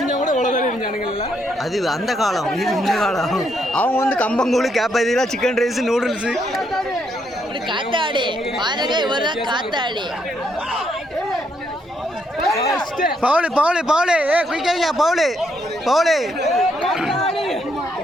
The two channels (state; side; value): normal; both; correlation 0.75